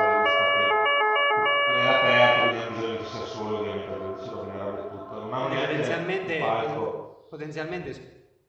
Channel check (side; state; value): both; identical; correlation 1.00